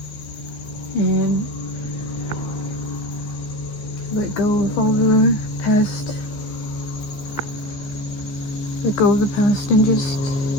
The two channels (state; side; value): late; right; 14 ms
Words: and let go of all the past, let go of the past, and just